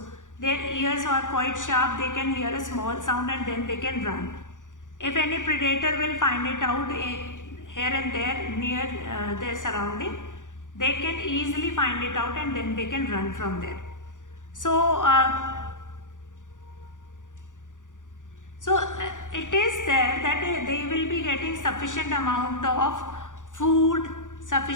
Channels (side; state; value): right; late; 0.87 ms